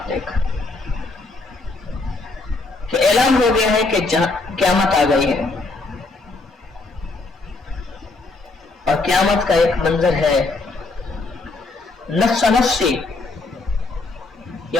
دیکھا کہ اعلان ہو گیا ہے کہ قیامت آ گئی ہے. اور قیامت کا ایک منظر ہے، نفس نفسی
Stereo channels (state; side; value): quieter; right; 3.5 dB